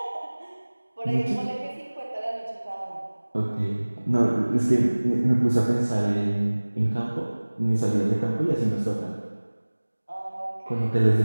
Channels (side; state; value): both; inverted; correlation -1.00